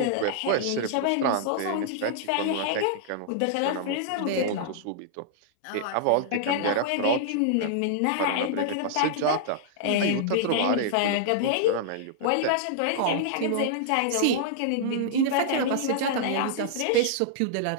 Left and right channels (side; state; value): both; different; correlation -0.01